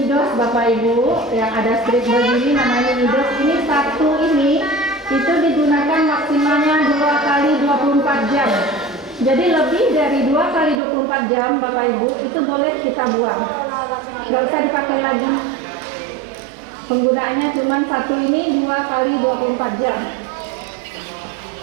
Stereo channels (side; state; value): left; drops out; at 10.8 s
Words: Bapak Ibu, yang ada strip begini namanya minidos. Ini satu ini itu digunakan maksimalnya 2 kali 24 Jadi lebih dari 2 kali 24 jam Bapak Ibu itu boleh kita buang. Nggak usah dipakai lagi. Penggunaannya cuma satu ini 2 kali 24 jam.